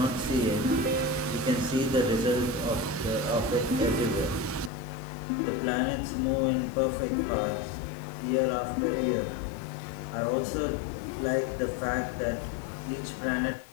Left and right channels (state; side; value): drops out; right; at 4.7 s